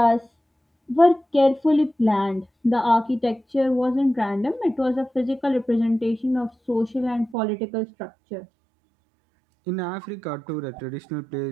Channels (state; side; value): drops out; left; at 7.4 s